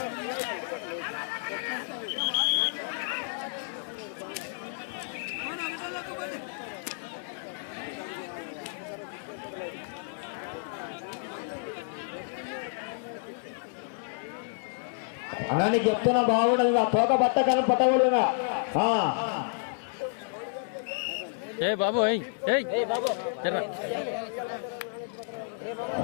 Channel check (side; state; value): right; silent; digital silence